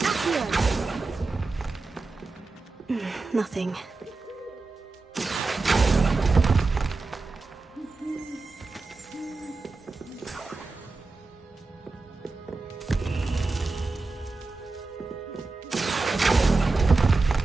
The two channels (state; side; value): quieter; left; 3.7 dB